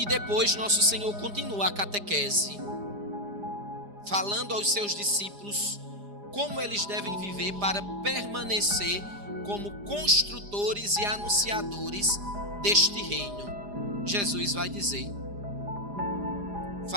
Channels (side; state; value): left; late; 4.9 ms